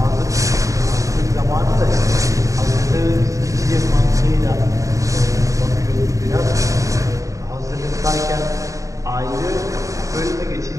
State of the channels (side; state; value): left; late; 0.16 ms